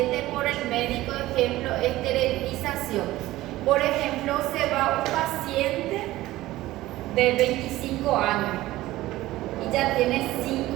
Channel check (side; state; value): left; quieter; 16.7 dB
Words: por el médico, ejemplo, esterilización. Por ejemplo, se va un paciente de 25 años y ya tiene